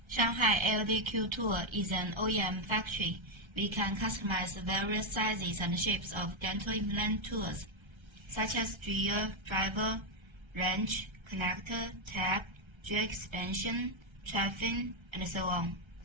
Shanghai LDQ Tool is an OEM factory. We can customize various sizes and shapes of dental implant tools, such as drill, driver, wrench, connector, tab, drill expansion, traffic, and so on.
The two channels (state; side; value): late; left; 1.3 ms